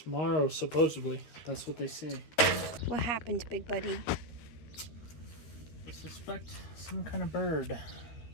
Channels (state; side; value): late; right; 13 ms